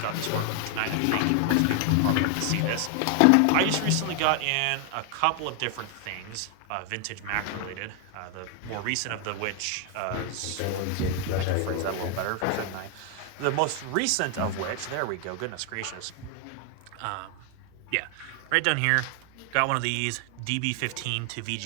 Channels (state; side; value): different; both; correlation 0.00